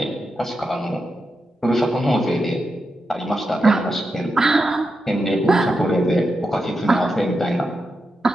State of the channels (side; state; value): both; normal; correlation 0.87